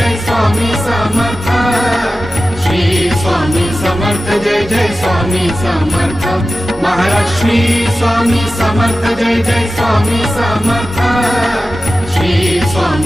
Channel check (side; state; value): both; normal; correlation 0.94